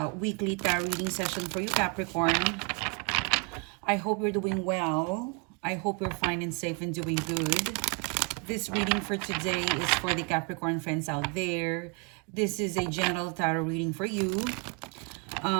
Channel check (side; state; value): left; quieter; 33.2 dB